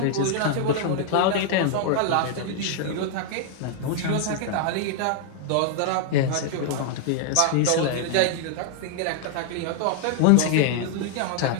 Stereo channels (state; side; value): different; both; correlation 0.00